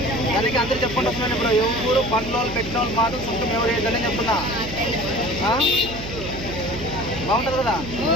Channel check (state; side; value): noise; right; hum, 11 dB below the sound